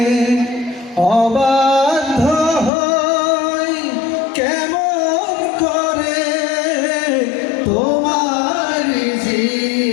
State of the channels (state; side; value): drops out; right; at 2.7 s